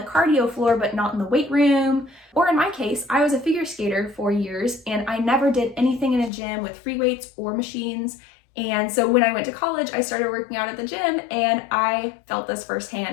cardio floor but not in the weight room. Or in my case, I was a figure skater for years and I never did anything in a gym with free weights or machines. And so when I went to college, I started working out at the gym and I felt this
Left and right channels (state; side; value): drops out; right; at 6.3 s